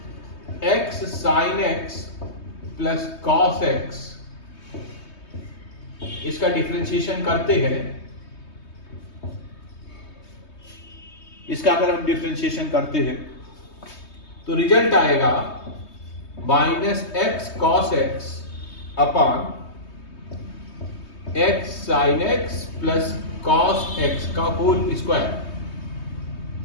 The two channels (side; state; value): right; late; 3.2 ms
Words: x sine x plus cos X इसका डिफरेंशिएशन करते हैं, इसका अगर हम डिफरेंशिएशन करते हैं तो रिजल्ट आएगा minus x cos x upon x sine x plus cos x का होल स्क्वायर।